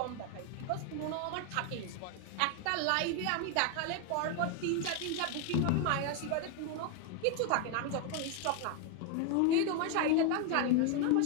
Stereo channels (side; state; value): both; different; correlation 0.01